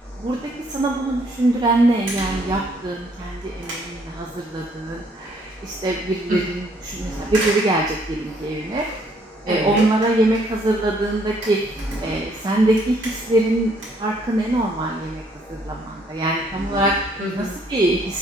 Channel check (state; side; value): normal; both; correlation 0.66